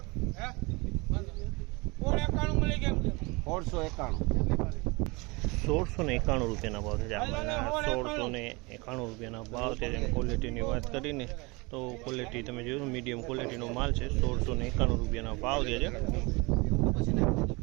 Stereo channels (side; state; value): left; quieter; 26.3 dB